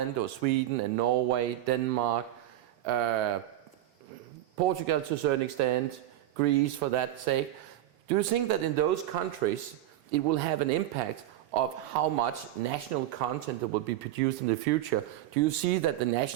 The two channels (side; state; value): left; quieter; 13.5 dB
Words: or Sweden and Norway, Denmark, Portugal to a certain extent, Greece for that sake. Do you think that in those countries it will have an impact of how much national content that will be produced in the future? Do you see that the